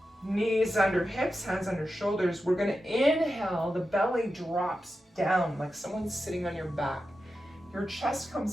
knees under hips, hands under shoulders, we're going to inhale, the belly drops down like someone's sitting on your back. Your chest comes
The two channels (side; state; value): both; normal; correlation 0.90